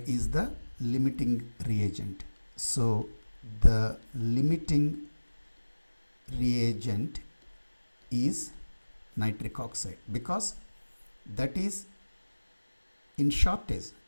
is the limiting reagent. So the limiting reagent is nitric oxide, because that is in shortage.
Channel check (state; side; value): inverted; both; correlation -1.00